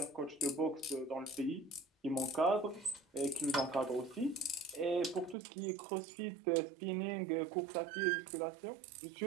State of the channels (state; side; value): drops out; left; at 5.4 s